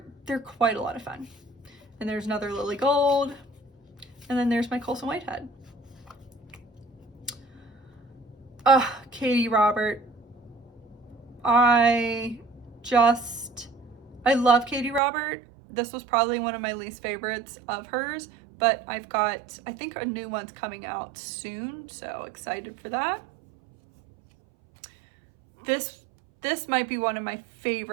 quite a lot of fun. And there's another Lily Gold, and then there's my Colson Whitehead. Katie Robert. I I love Katie Robert. This was probably one of my least favorites of hers, but I've got, I think a new one's coming out soon, so excited for that. This might be one of my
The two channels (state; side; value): drops out; left; at 15.0 s